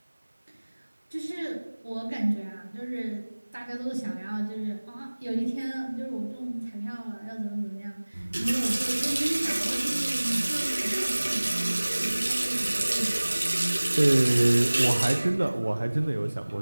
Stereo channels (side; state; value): both; inverted; correlation -1.00